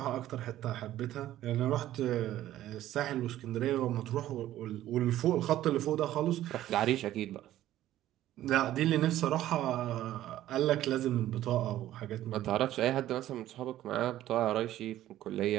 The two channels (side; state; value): left; quieter; 13.5 dB